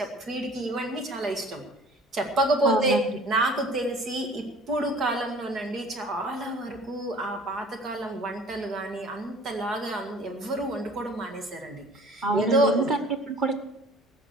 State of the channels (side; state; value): both; normal; correlation 0.48